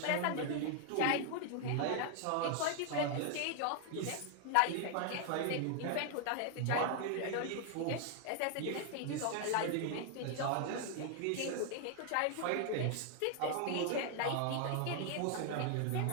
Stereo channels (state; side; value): different; both; correlation 0.00